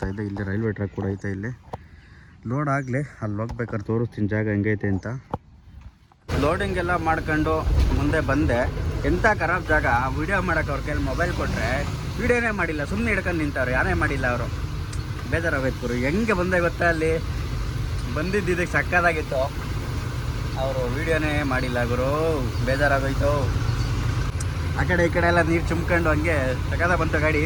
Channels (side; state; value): both; identical; correlation 1.00